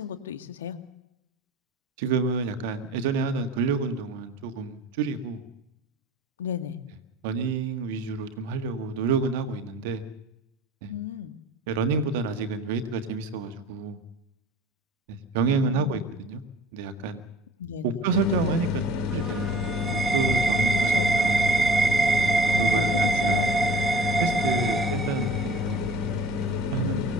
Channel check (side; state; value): both; normal; correlation 0.44